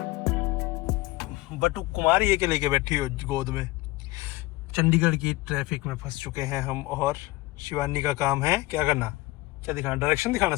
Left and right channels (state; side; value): quieter; right; 20.3 dB